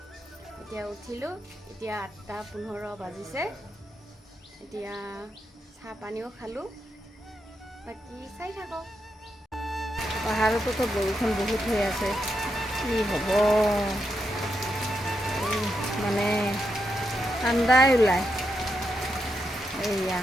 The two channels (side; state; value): both; normal; correlation 0.84